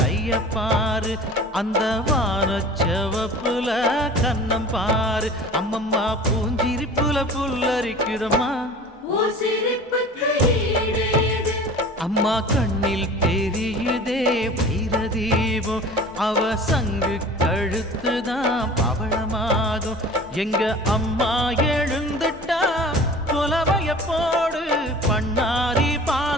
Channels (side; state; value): both; normal; correlation 0.42